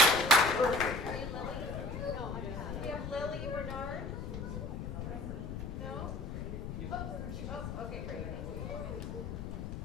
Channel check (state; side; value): noise; left; rumble, 5 dB below the sound